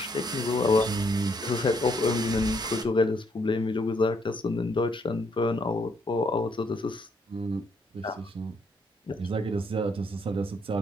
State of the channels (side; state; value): both; normal; correlation 0.71